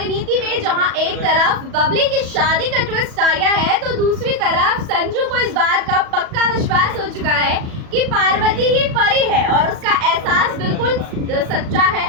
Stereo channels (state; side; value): late; left; 37 ms